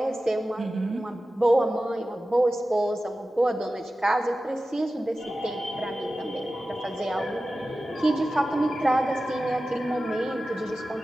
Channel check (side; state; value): both; normal; correlation 0.94